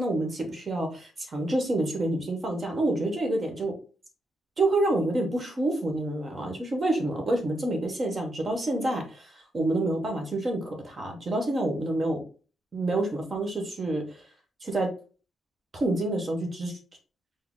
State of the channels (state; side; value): normal; both; correlation 0.81